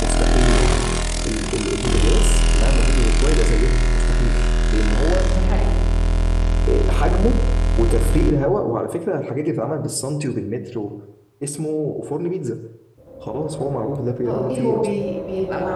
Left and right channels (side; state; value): both; identical; correlation 1.00